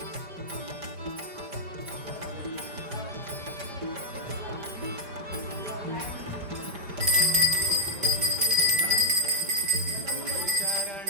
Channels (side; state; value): left; late; 5.0 ms